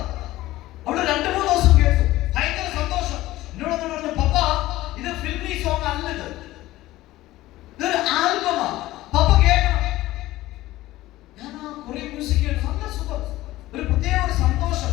അവള് 2-3 ദിവസം കേട്ടു, ഭയങ്കര സന്തോഷം. എന്നോട് പറഞ്ഞു, പപ്പ ഇത് ഫിൽമി സോങ് അല്ലത്, ഇതൊരു ആൽബമാ, പപ്പ കേൾക്കണം. ഞാൻ ആ കൊറിയൻ മ്യൂസിക് കേട്ടു, നല്ല സുഖം, ഒരു പ്രത്യേക ഒരു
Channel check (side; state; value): right; quieter; 16.7 dB